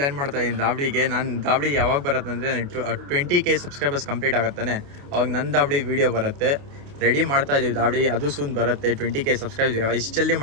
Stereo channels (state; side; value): late; left; 28 ms